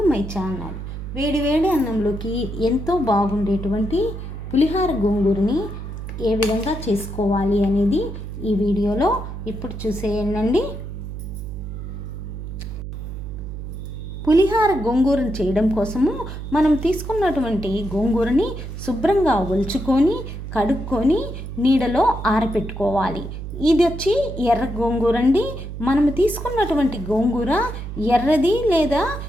my channel. వేడి వేడి అన్నంలోకి ఎంతో బాగుండేటువంటి పులిహార గోంగూరని ఏ విధంగా చేసుకోవాలి అనేది ఈ వీడియోలో ఇప్పుడు చూసేయండి. పులిహార గోంగూరను చేయడం కోసము మనం తీసుకున్నటువంటి గోంగూరని శుభ్రంగా ఒలుచుకొని కడుక్కొని నీడలో ఆరబెట్టుకోవాలి. ఇది వచ్చి ఎర్ర గోంగూర అండి. మనము తీసుకున్నటువంటి గోంగూర ఎర్రది లేదా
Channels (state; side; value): noise; right; hum, 8 dB below the sound